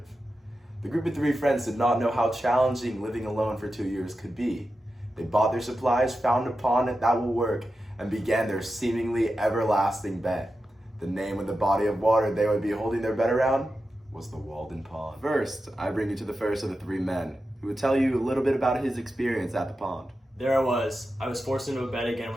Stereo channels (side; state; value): both; normal; correlation 0.91